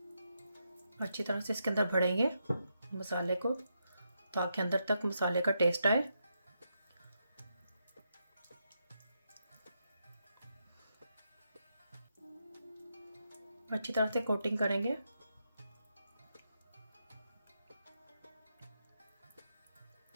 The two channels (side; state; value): both; inverted; correlation -0.82